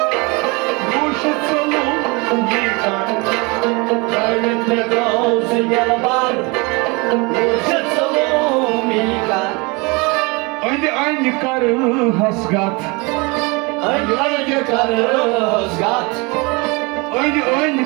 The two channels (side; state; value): left; quieter; 27.5 dB